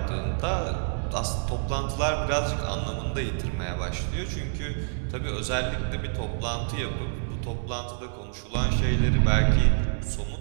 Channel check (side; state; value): left; silent; digital silence